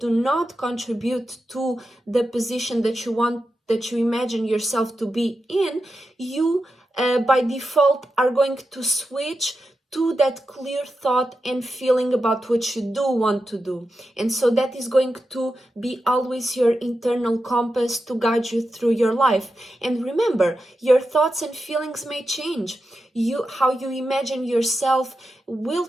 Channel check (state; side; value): normal; both; correlation 0.89